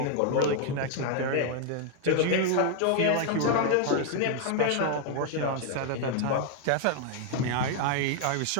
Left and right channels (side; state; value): both; different; correlation 0.00